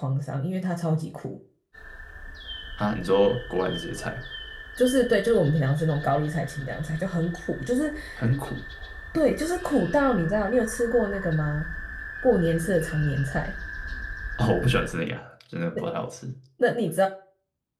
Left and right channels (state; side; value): identical; both; correlation 1.00